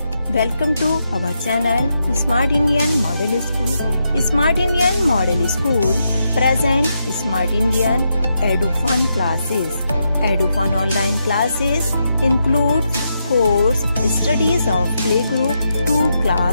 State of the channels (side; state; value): both; inverted; correlation -0.83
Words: welcome to our channel Smart Indian Model School. Smart Indian Model School present Smart Indian EduFun classes. EduFun online classes include course studies of playgroup to